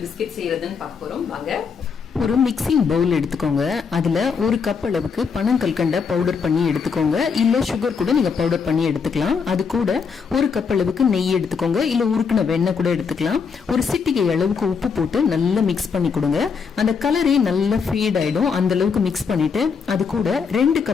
பிஸ்கெட் செய்யறதுன்னு பார்க்க போறோம். வாங்க. ஒரு மிக்சிங் பவுல் எடுத்துக்கோங்க. அதுல ஒரு கப் அளவுக்கு பனங்கல்கண்ட பவுடர் பண்ணி எடுத்துக்கோங்க. இல்ல சுகர் கூட நீங்க பவுடர் பண்ணி எடுத்துக்கலாம். அது கூட ஒரு கப் அளவுக்கு நெய் எடுத்துக்கோங்க. இல்ல உருக்குன வெண்ணெய் கூட எடுத்துக்கலாம். ஒரு சிட்டிகை அளவுக்கு உப்பு போட்டு நல்லா மிக்ஸ் பண்ணி கொடுங்க. அந்த கலரே நல்லா ஃபேட் ஆயிடும். அந்த அளவுக்கு மிக்ஸ் பண்ணிட்டு அது கூட 2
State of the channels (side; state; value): right; quieter; 5.8 dB